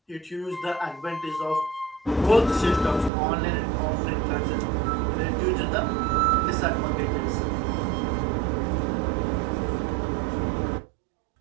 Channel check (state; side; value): drops out; left; at 3.1 s